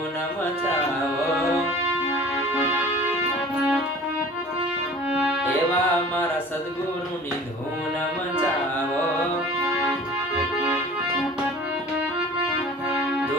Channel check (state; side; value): normal; both; correlation 0.44